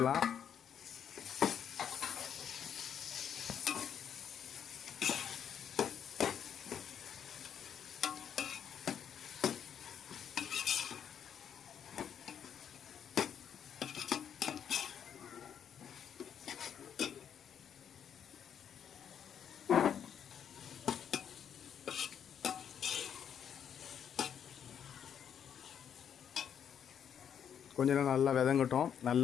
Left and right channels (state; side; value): quieter; right; 8.5 dB